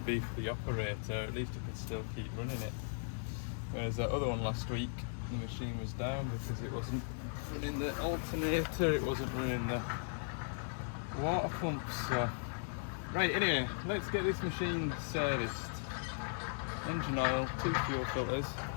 be for the operator, at least it can still keep running it. Whereas that other one last week, the machine was down because it wasn't running the alternator, it wasn't running the water pump. So, right, anyway, let's get this machine serviced. Engine oil, 2 fuel filters,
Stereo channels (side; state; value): right; silent; 53 dB below the other